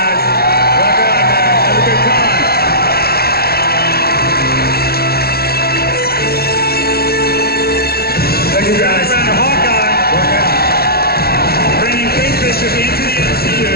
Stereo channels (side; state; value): right; late; 0.45 ms